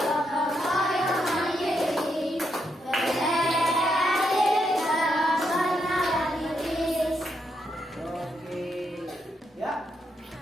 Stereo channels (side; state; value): both; normal; correlation 0.80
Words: yang mandiri, berdaya dan benar diri. Oke, ya.